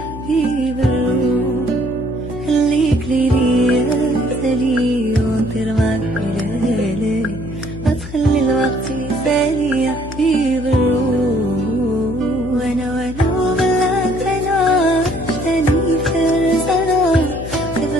الروح. خليك ليا مثالي ونطير معاك بليالي، ما تخلي الوقت يسالي يا حبيب الروح. وانا وبلاك انا عشتني فرسانة، كيف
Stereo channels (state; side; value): noise; left; hum, 12 dB below the sound